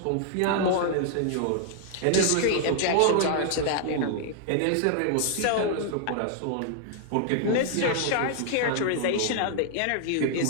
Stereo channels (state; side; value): different; both; correlation -0.01